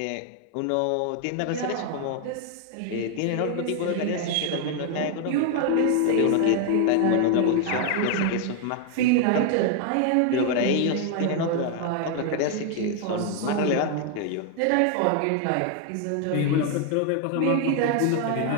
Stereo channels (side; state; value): both; different; correlation 0.00